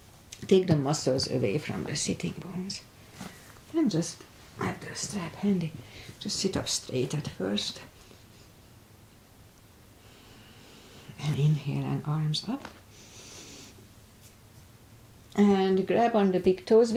Take the muscles away from the sitting bones. And just have the strap handy. Just sit up straight at first. And inhale and arms up. And grab on the big toes.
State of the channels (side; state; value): both; identical; correlation 1.00